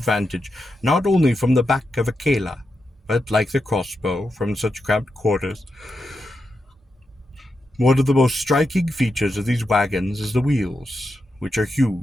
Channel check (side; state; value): both; normal; correlation 0.87